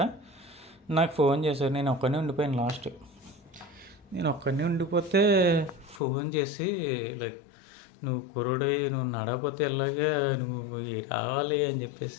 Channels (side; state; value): right; drops out; at 6.0 s